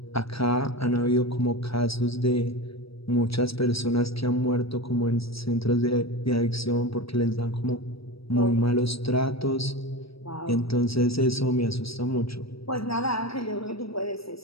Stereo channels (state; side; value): late; right; 0.76 ms